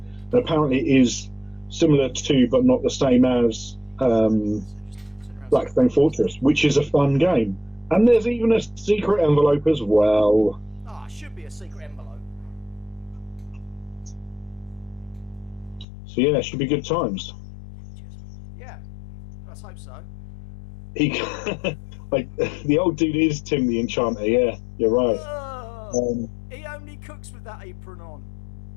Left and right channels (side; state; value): right; drops out; at 15.9 s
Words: apparently it is similar to, but not the same as, Blackstone Fortress, which is a fun game. And there's even a secret envelope as well. Ah, it should be a secret envelope. So yeah, it should be good times. Yeah, let's hope so. He, like, the old dude is Tim the Enchanter. Yeah, you're right. He only cooks with that apron on.